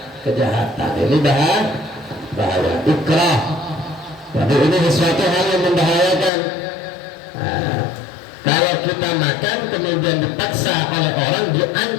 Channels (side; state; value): right; drops out; at 6.3 s